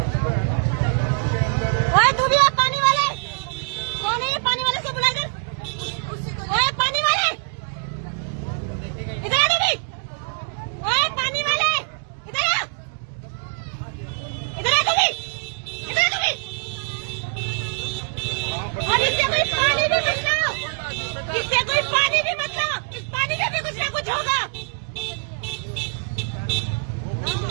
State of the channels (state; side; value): silent; left; 63 dB below the other